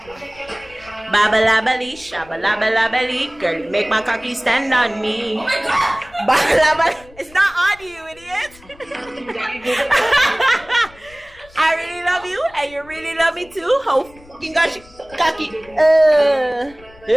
Babalabali, shabalabali, girl, you make my cocky stand on me. Oh my god! Babalabali, it's not on you, idiot. I really love you, and you really love me too. Oh, fucking gosh, cocky.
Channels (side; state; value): left; noise; rumble, 25 dB below the sound